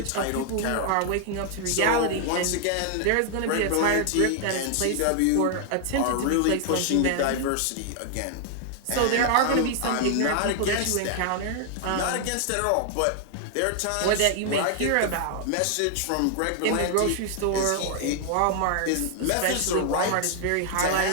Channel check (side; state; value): both; different; correlation 0.00